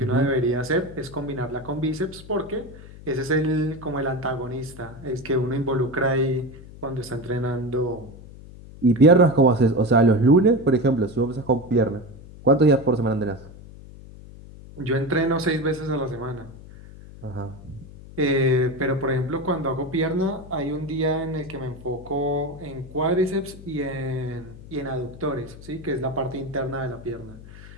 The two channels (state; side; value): noise; left; hum, 17 dB below the sound